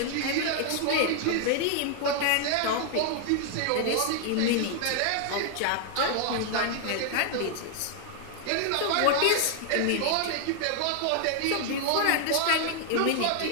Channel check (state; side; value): different; both; correlation 0.00